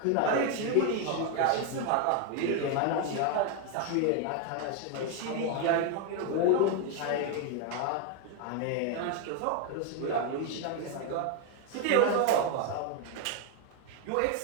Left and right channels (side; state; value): both; different; correlation 0.01